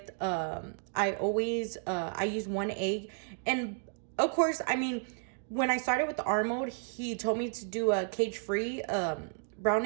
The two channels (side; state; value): left; silent; 56 dB below the other